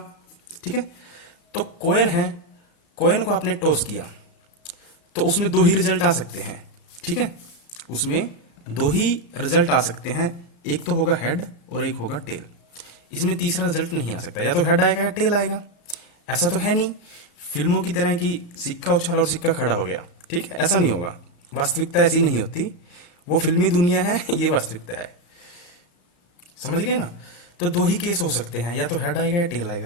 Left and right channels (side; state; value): right; late; 35 ms